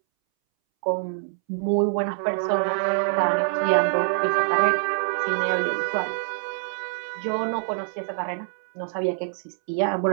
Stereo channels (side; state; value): left; silent; 62 dB below the other